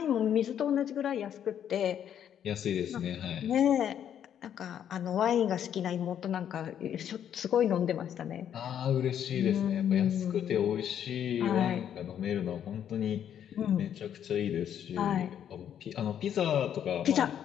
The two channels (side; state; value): right; quieter; 9.5 dB